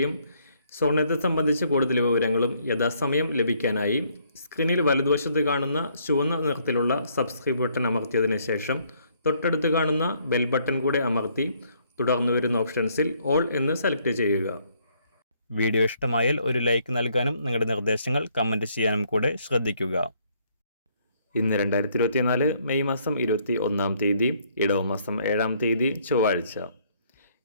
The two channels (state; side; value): inverted; both; correlation -0.67